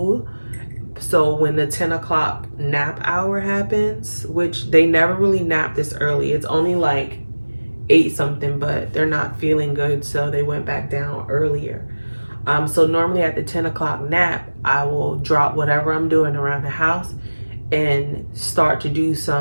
so when the 10 o'clock nap hour happens, which they never really nap this early, it's only like 8 something, but they're not feeling good, so they went back down earlier. So normally at the 10 o'clock nap, I will drop whatever I'm doing around the house and start to do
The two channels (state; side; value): inverted; both; correlation -1.00